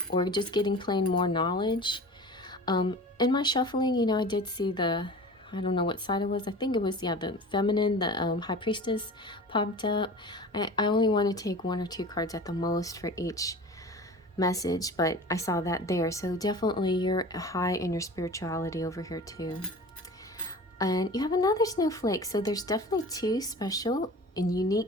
or just getting plain more knowledge. In my shuffling, I did see I don't know what side it was. I think it was, the feminine, the High Priestess popped up. I only want to take 1 or 2 cards at the most for each message, but I saw that there. So definitely you're high in your spirituality over here too. And you have another snowflake. So there's definitely 2 special and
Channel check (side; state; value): both; normal; correlation 0.37